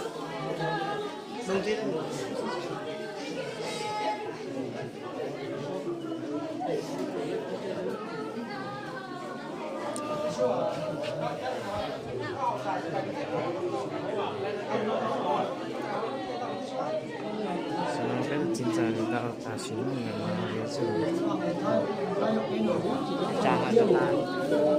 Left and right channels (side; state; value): both; identical; correlation 1.00